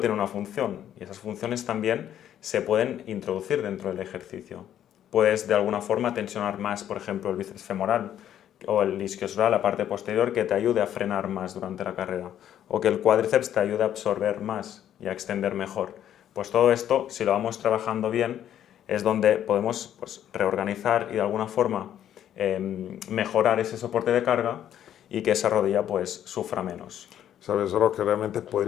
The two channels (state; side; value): quieter; right; 10.6 dB